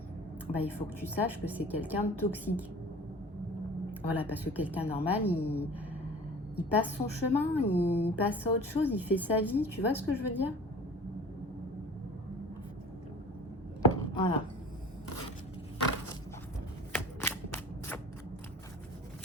bah, il faut que tu saches que c'est quelqu'un de toxique. Voilà, parce que quelqu'un normal, il passe son chemin, il passe à autre chose, il fait sa vie. Tu vois ce que je veux dire? Voilà.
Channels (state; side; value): normal; both; correlation 0.42